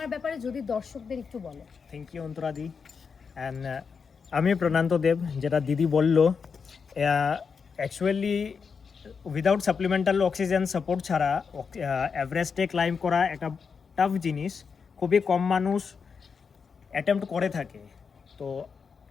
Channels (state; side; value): quieter; right; 5.8 dB